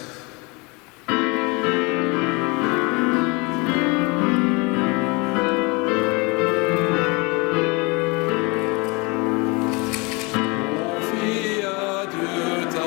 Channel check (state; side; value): quieter; right; 27.9 dB